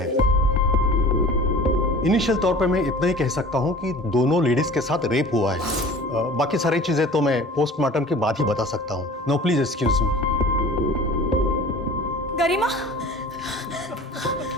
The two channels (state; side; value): normal; both; correlation 0.42